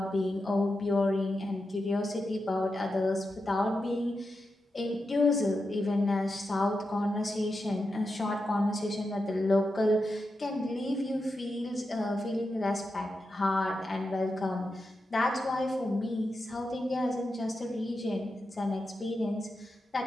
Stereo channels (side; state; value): both; normal; correlation 0.88